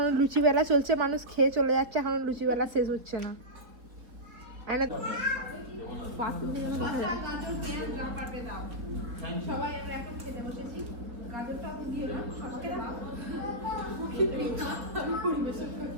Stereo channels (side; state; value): left; late; 4.1 ms